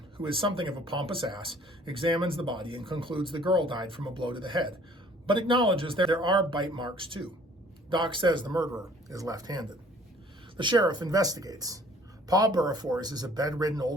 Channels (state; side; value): normal; both; correlation 0.55